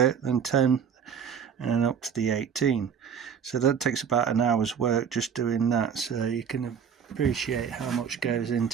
then 10, and then up to the 18. So that takes about an hour's work just doing that, so you can appreciate how much goes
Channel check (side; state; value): left; quieter; 7.4 dB